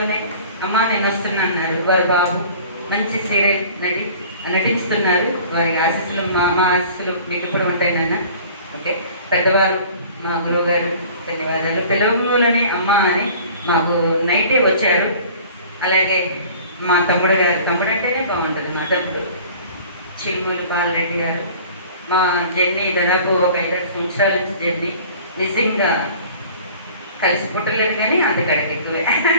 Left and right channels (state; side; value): inverted; both; correlation -0.46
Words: అమ్మ నేను వస్తున్నా అన్నారు. వారు బాబు మంచి సీరియల్ నటిస్తున్నారు. వారికి ఆశీస్సులు మా ఆశీస్సులు మీకు ఎప్పుడు ఉంటాయి నాన్న. ఓకే, పెద్దవారు మా గురువు గారు ధన్యవాదాలు. పిలవలోనే అమ్మ అని మాకు నైటే వచ్చారు. అలాగే మా తమ్ముడు గారు, తమ్ముడు అంటేనే బాగుంటుంది, మా తమ్ముడు చిరుమూలు బాలరెడ్డి గారు. మా జర్నీ దాదాపు ఒక 5-6 సంవత్సరాల నుంచి జర్నీ. నిజంగా కలిసి పుట్టలేదు కానీ అంతకాడికి ఎక్కువే.